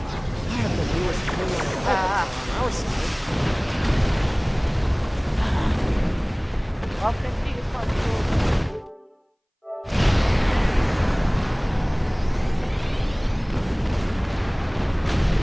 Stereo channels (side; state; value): both; identical; correlation 1.00